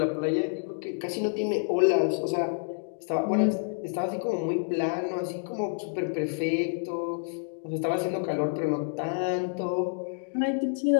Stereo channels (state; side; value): silent; right; digital silence